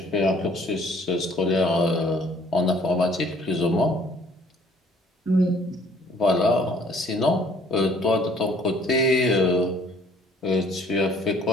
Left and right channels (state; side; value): normal; both; correlation 0.59